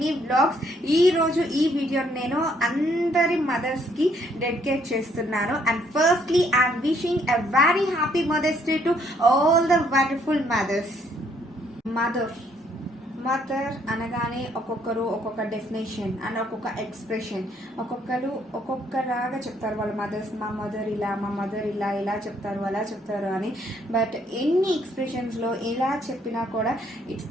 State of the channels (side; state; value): both; normal; correlation 0.68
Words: vlogs. ఈ రోజు ఈ వీడియో నేను అందరి మదర్స్ కి డెడికేట్ చేస్తున్నాను. And firstly I'm wishing a very happy mother's day to all the wonderful mothers. Mother అనగానే ఒక్కొక్కరు ఒక్కొక్క డెఫినేషన్ అండ్ ఒక్కొక్క ఎక్స్ప్రెషన్, ఒక్కొక్కరు ఒక్కొక్కలాగా చెప్తారు. వాళ్ళ మదర్స్, మా మదర్ ఇలా ఇలా చెప్తారు, అలా చెప్తారు అని. బట్ ఎన్ని ఎక్స్ప్రెషన్స్లో ఎలా చెప్పినా కూడా ఇట్స్